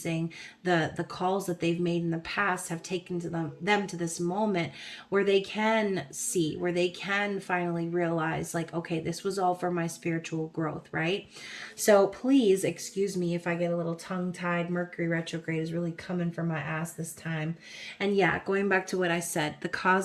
the calls that they've made in the past have taken to them to this moment where they can see, where they can finally realize, like, okay, this was all for my spiritual growth, right? So please excuse me if I get a little tongue-tied. Mercury retrograde is really coming for my ass this time. And yeah, going back to what I said, the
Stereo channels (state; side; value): identical; both; correlation 1.00